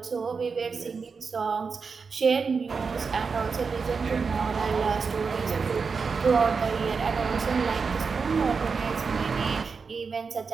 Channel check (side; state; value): left; quieter; 5.2 dB